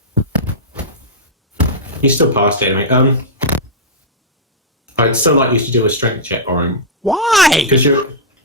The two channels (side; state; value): both; normal; correlation -0.10